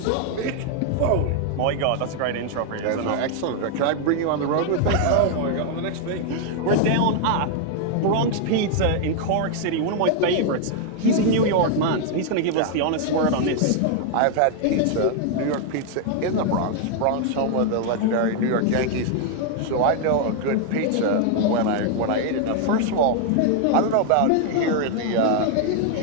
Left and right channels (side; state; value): both; different; correlation 0.00